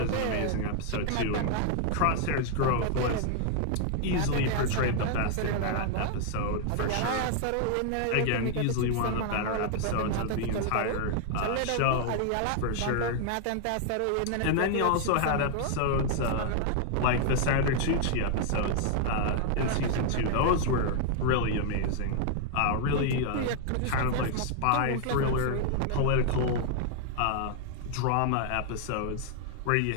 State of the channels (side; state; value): both; different; correlation 0.00